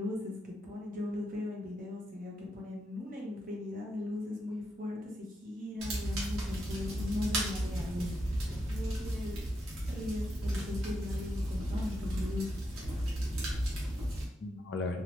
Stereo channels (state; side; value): normal; both; correlation 0.83